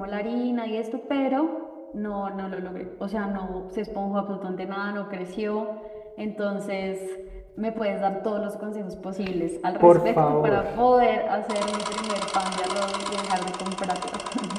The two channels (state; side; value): identical; both; correlation 1.00